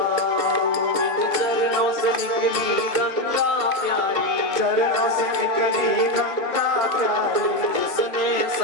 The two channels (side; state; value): right; late; 2.5 ms